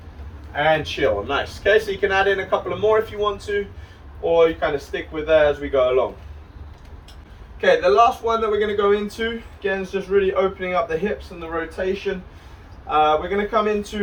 And chill, nice. Okay, so you can add in a couple of more if you want to, or you kind of stick with that as we go along. Okay, the last one that we're going to go into, again, is just really opening up the hips and the rotation. We're going to come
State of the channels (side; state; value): both; identical; correlation 1.00